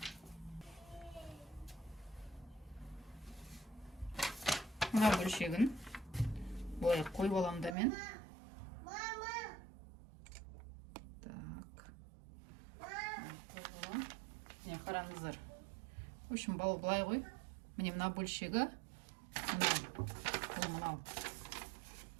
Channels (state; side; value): drops out; left; at 7.8 s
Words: Мына бөлшегін былай қойып аламын да мен. Қараңыздар. В общем, былай ғой. Міне мына бөлшегі мынау.